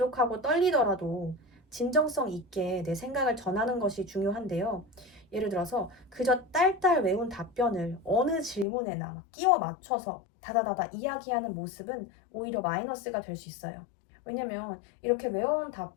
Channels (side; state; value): right; drops out; at 8.7 s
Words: 떨리더라도 진정성 있게 내 생각을 전하는 것이 중요한데요. 예를 들어서 그저 딸딸 외운 답변을 어느 질문에나 막 끼워 맞춰서 다다다다 이야기하는 모습은 오히려 마이너스가 될 수 있어요. 왜냐면 이렇게 외워온